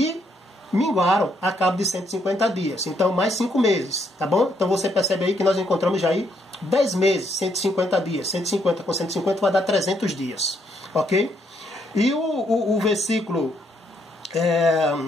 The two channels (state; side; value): normal; both; correlation 0.73